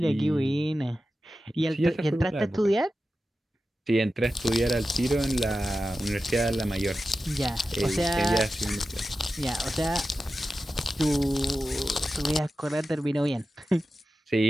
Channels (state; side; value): normal; both; correlation 0.93